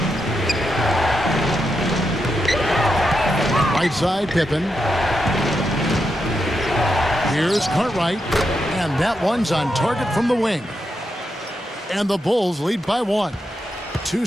Right side, Pippen. Here's Cartwright. And that one's on target from the wing. And the Bulls lead by 1.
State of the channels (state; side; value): normal; both; correlation 0.85